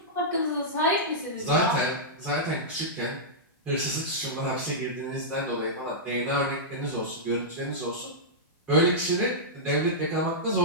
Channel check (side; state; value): both; normal; correlation -0.12